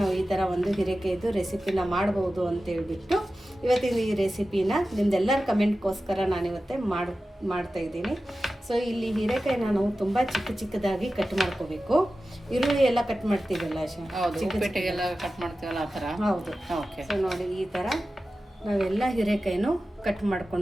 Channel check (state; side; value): normal; both; correlation 0.94